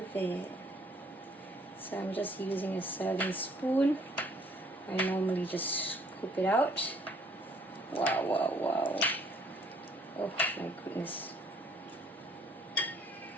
it. So I'm just using a serving spoon. I normally just scoop it out. Wow, wow, wow. Oh my goodness.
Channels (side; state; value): both; normal; correlation 0.61